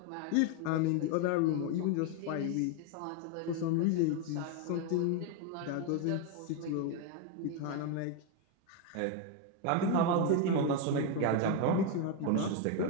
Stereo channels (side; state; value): both; different; correlation 0.01